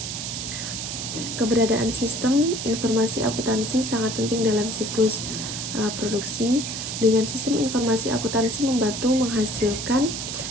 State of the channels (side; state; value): right; noise; hiss, 5 dB below the sound